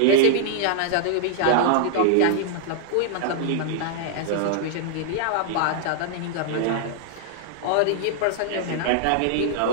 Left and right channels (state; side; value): different; both; correlation -0.01